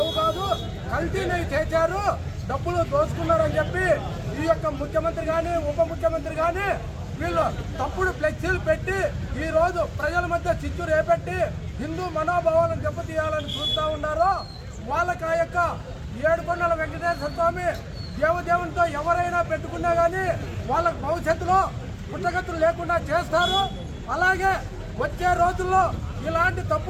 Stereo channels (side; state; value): both; identical; correlation 1.00